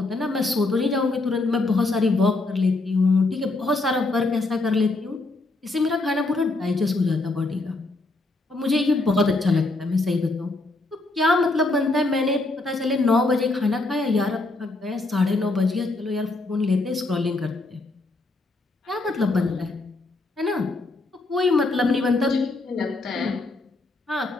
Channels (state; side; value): quieter; right; 3.1 dB